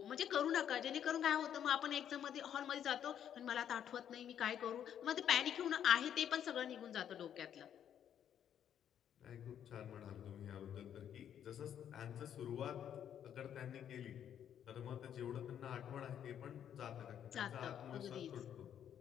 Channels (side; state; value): right; quieter; 9.5 dB